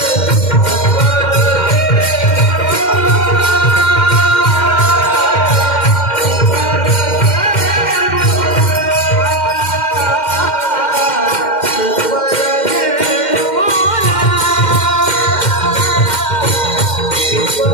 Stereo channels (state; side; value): late; right; 2.1 ms